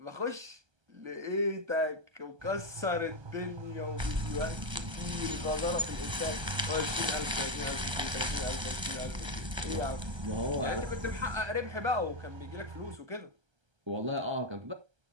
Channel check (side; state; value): left; late; 1.3 ms